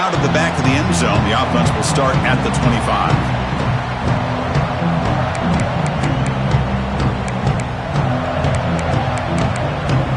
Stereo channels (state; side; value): identical; both; correlation 1.00